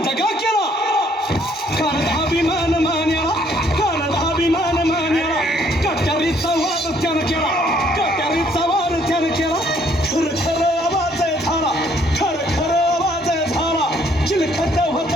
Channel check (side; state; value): both; normal; correlation 0.65